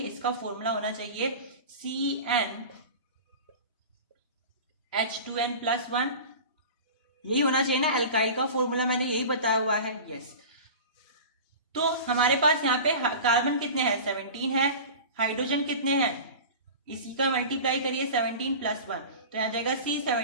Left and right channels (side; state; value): both; inverted; correlation -0.34